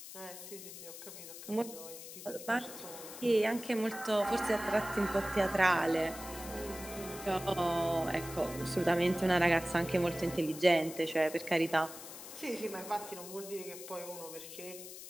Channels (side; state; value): left; noise; hiss, 12 dB below the sound